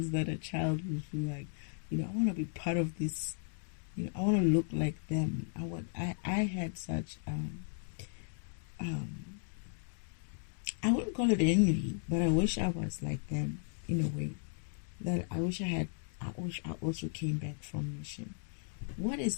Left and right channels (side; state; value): right; silent; digital silence